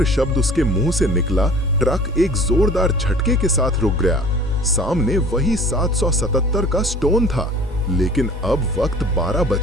शब्द उसके मुंह से निकला, ट्रक एक जोरदार झटके के साथ रुक गया। सामने वही 777 का स्टोन था, लेकिन अब वक्त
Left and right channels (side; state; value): both; normal; correlation 0.46